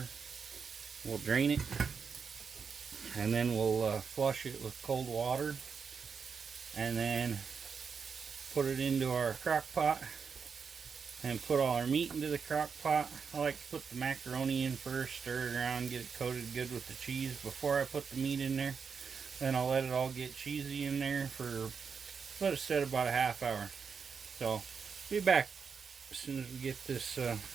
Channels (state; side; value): quieter; left; 5.9 dB